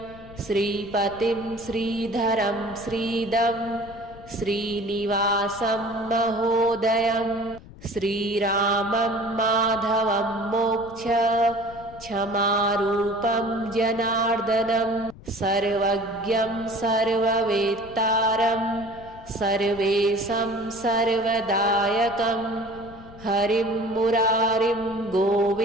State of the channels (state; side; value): noise; left; rumble, 19 dB below the sound